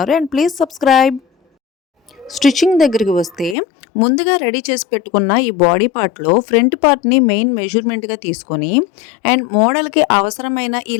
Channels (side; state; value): right; drops out; at 3.6 s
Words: And please subscribe. స్టిచ్చింగ్ దగ్గరికి వస్తే ముందుగా రెడీ చేసి పెట్టుకున్న ఈ బాడీ పార్ట్లో ఫ్రంట్ పార్ట్ని మెయిన్ మెజర్మెంట్గా తీసుకొని అండ్ మోడల్కి అవసరమైన ఈ